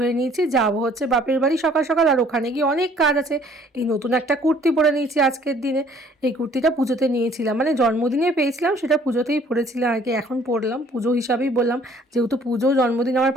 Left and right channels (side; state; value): both; normal; correlation 0.57